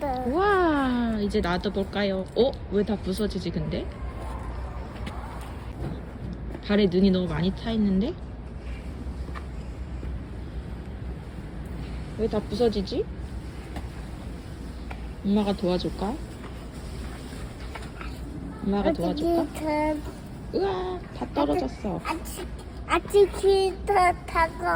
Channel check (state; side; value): identical; both; correlation 1.00